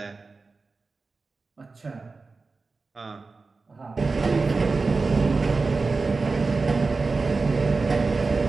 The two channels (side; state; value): left; quieter; 4.0 dB